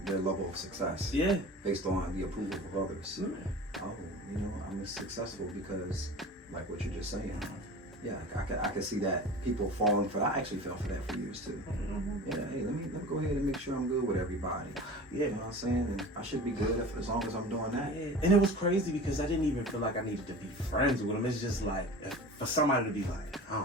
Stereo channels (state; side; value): normal; both; correlation 0.37